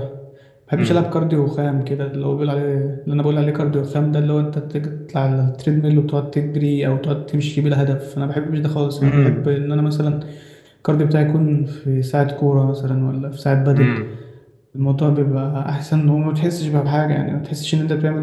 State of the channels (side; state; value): both; identical; correlation 1.00